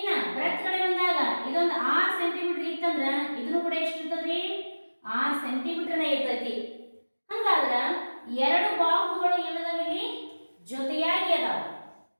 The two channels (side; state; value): both; inverted; correlation -1.00